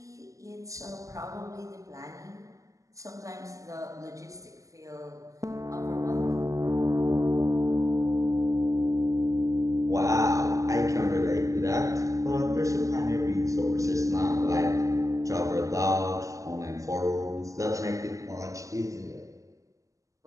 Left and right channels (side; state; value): left; late; 0.16 ms